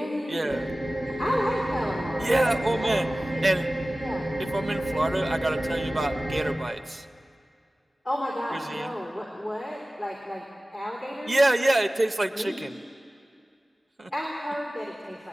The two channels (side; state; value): both; normal; correlation 0.97